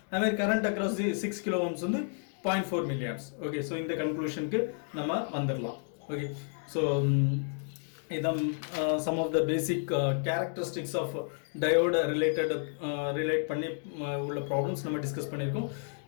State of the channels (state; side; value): silent; right; 57 dB below the other